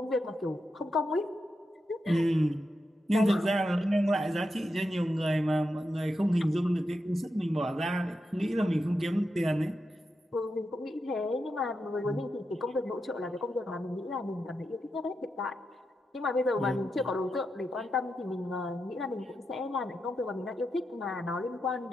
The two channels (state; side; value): normal; both; correlation 0.87